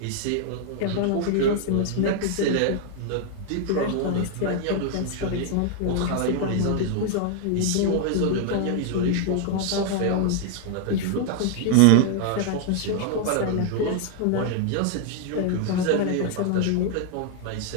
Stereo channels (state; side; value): different; both; correlation 0.00